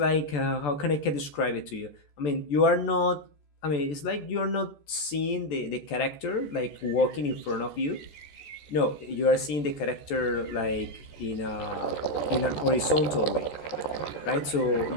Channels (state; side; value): late; right; 14 ms